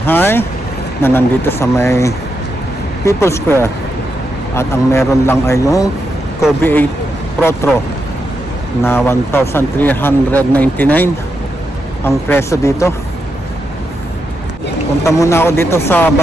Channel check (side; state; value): both; normal; correlation 0.84